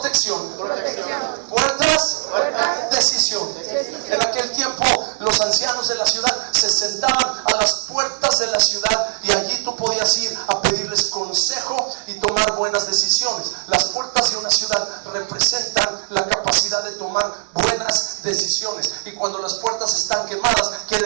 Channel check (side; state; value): left; silent; digital silence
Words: Puertas, decisión. En aquel tiempo los ancianos de la ciudad se sentaban a las puertas de la ciudad y allí tú podías ir a pedirles consejo y tomar buenas decisiones. Las puertas de una ciudad representan la capacidad de tomar buenas decisiones, y cuando las puertas están quemadas quiere